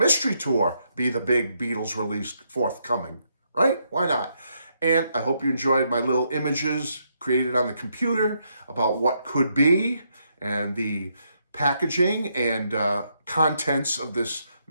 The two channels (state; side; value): inverted; both; correlation -0.77